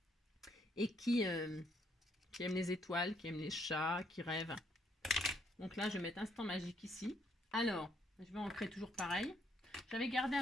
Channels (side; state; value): both; normal; correlation 0.70